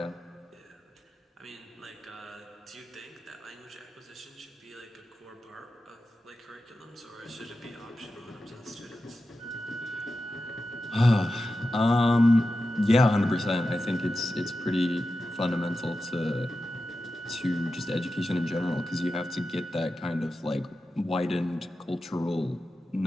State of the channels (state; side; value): normal; both; correlation 0.92